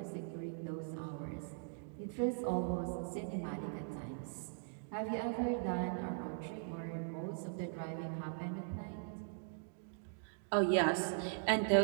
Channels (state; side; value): silent; left; digital silence